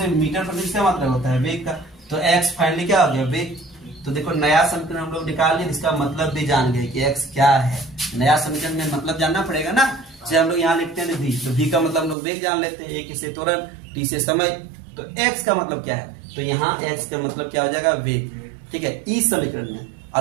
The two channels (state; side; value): drops out; left; at 12.2 s